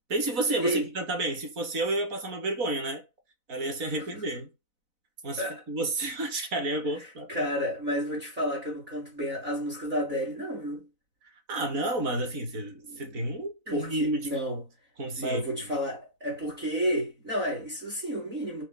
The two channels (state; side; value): late; left; 4.0 ms